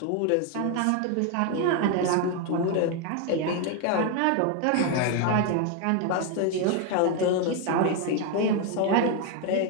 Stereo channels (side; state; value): both; different; correlation 0.01